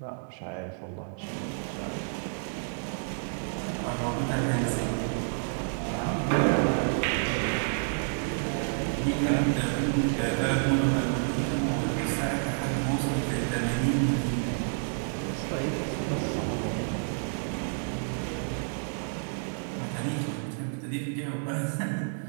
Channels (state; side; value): silent; left; digital silence